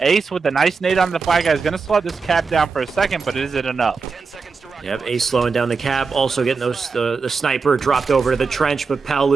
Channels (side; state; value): left; quieter; 4.9 dB